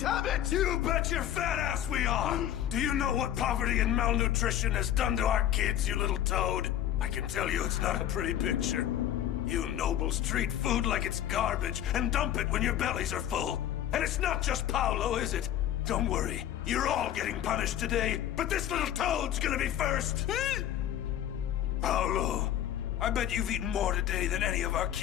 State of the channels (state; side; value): quieter; right; 11.4 dB